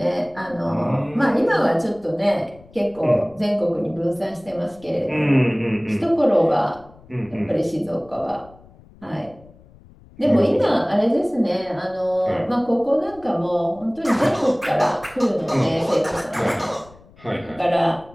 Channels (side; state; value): left; noise; rumble, 25 dB below the sound